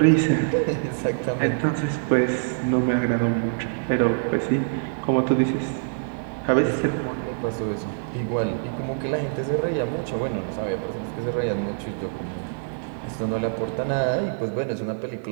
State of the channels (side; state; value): left; silent; digital silence